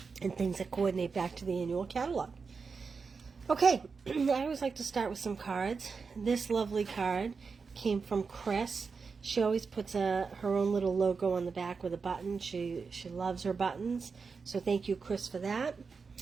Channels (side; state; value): left; quieter; 5.0 dB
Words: and things that coordinate back to the annual catalog. Okay, I always like to start with some cards. This lovely card came from Chris. She always puts her own little logo on the back with a button. She loves her buttons, so thank you, Chris, for that.